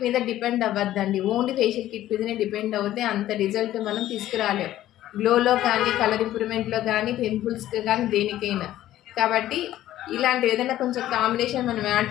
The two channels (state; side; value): quieter; right; 13.6 dB